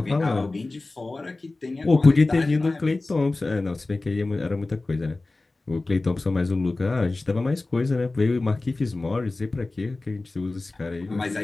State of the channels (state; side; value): quieter; right; 3.2 dB